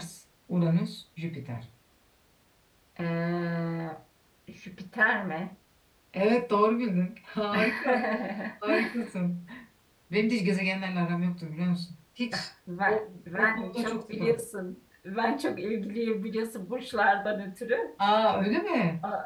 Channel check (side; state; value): both; identical; correlation 1.00